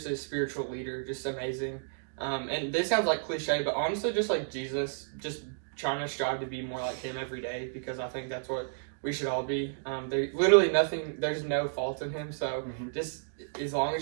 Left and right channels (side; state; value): left; silent; digital silence